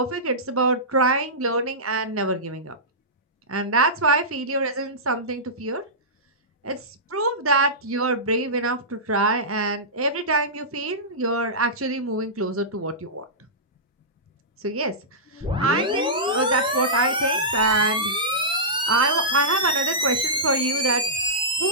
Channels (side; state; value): both; normal; correlation -0.16